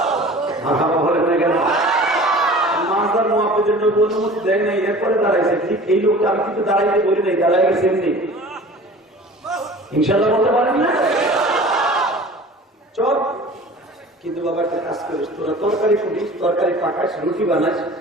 বলে না কেন মাজার মহাপদের নবী অনুমতি দেয় নাই, এরপরে দাঁড়াইছে। ঠিক এই লোকটা আমি কিন্তু দাঁড়াইতে বলি নাই, দাঁড়াই গেছে এমনি। ইনশাল্লাহ বলতে পারেন না চল। কিন্তু বাবা একটা কাজ করিস, তোরা তরকারি ফুটিস, তরকারি পাকাস, রুটি বানাস,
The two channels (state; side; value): normal; both; correlation 0.42